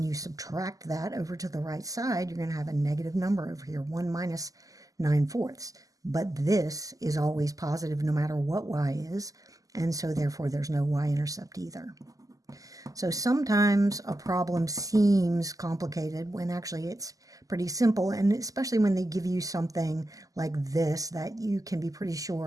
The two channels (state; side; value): late; left; 0.17 ms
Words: you subtract that over to the right side, you're going to have a negative number over here, 1 minus 9/4. But this is always positive no matter what y is, and so therefore there's no y-intercept either. So sometimes a problem seems complicated when actually it's pretty simple, and especially when they give you something like this that you can be pretty